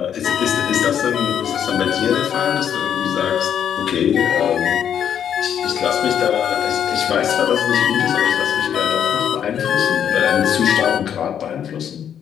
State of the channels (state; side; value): quieter; right; 9.0 dB